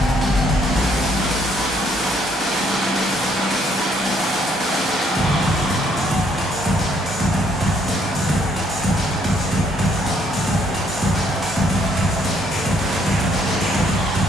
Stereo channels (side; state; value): both; normal; correlation 0.68